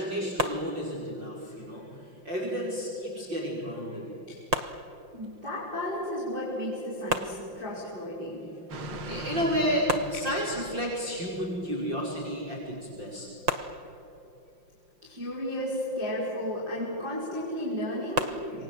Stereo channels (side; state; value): left; late; 5.7 ms